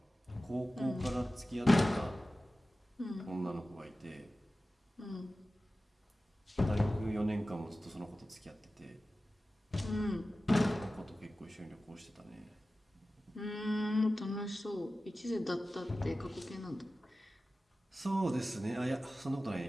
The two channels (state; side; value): normal; both; correlation 0.95